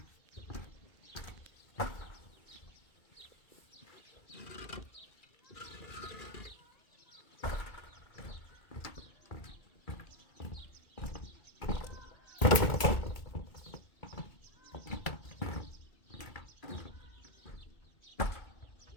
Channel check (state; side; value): late; right; 2.2 ms